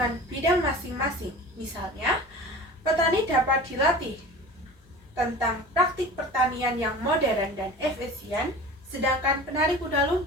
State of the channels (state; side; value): normal; both; correlation 0.38